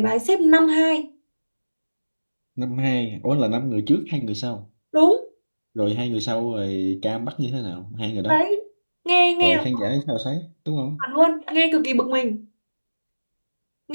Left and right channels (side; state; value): both; inverted; correlation -1.00